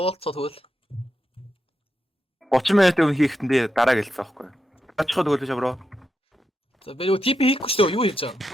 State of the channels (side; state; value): both; normal; correlation 0.86